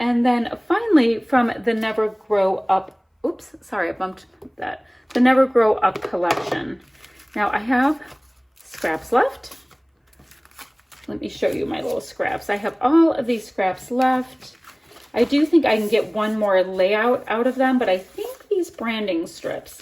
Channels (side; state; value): both; identical; correlation 1.00